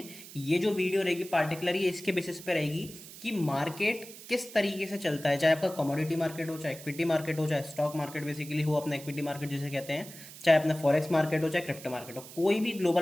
ये जो वीडियो रहेगी पार्टिकुलर ये इसके बेसिस पे रहेगी कि मार्केट किस तरीके से चलता है। चाहे आपका कमोडिटी मार्केट हो, चाहे इक्विटी मार्केट हो, चाहे स्टॉक मार्केट बेसिकली हो, अपना इक्विटी मार्केट जिसे कहते हैं, चाहे अपना फॉरेक्स मार्केट हो, चाहे क्रिप्टो मार्केट हो, कोई भी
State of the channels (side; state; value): right; noise; hiss, 16 dB below the sound